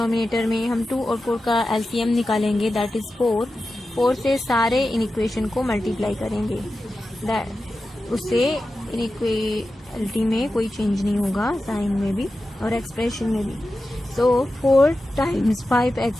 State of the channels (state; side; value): normal; both; correlation 0.93